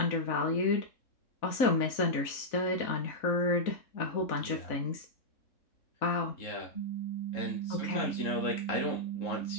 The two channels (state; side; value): late; right; 4.0 ms